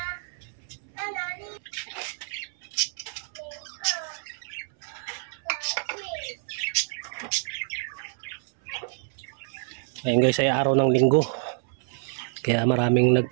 Ayan guys, ay araw ng linggo. Kaya maraming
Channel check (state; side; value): silent; left; 60 dB below the other